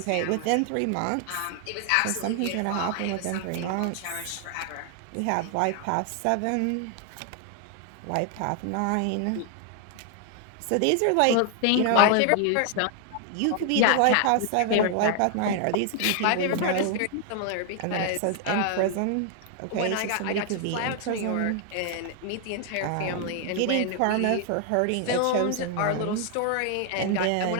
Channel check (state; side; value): different; both; correlation 0.00